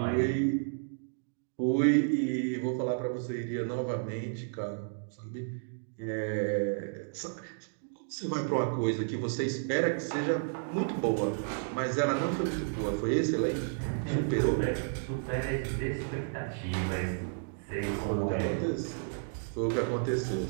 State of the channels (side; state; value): left; silent; digital silence